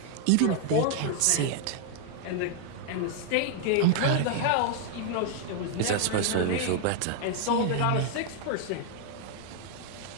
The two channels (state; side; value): different; both; correlation 0.00